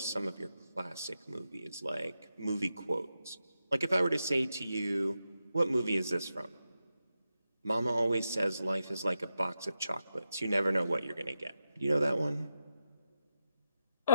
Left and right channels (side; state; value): both; inverted; correlation -0.87